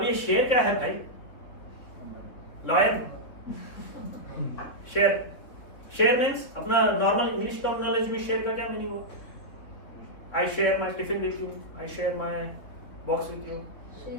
ये share क्या है भाई? लॉयन। शेयर मीन्स अपना नॉर्मल इंग्लिश टर्मिनोलॉजी में शेयर का क्या मीनिंग हुआ? I share my tiffin with you, I share my box with you.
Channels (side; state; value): right; late; 3.8 ms